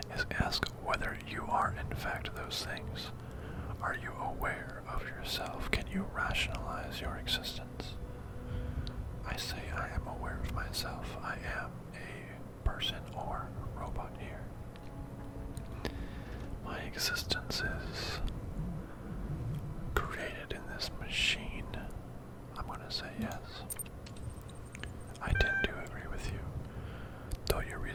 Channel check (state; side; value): identical; both; correlation 1.00